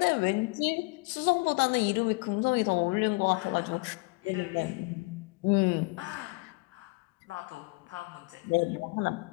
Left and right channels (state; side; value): quieter; right; 27.5 dB